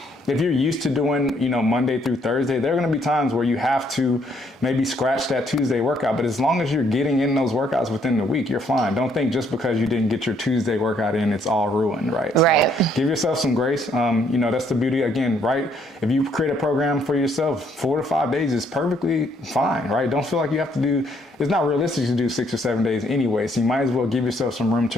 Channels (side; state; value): both; normal; correlation 0.68